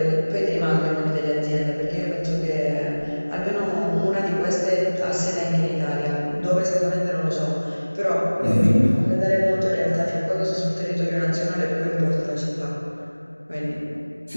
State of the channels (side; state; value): both; inverted; correlation -1.00